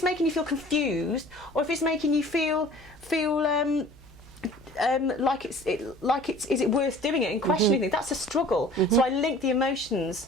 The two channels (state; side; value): noise; right; hum, 22 dB below the sound